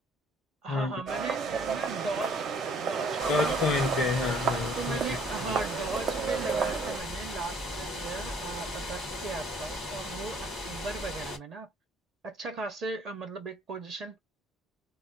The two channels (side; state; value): both; normal; correlation 0.59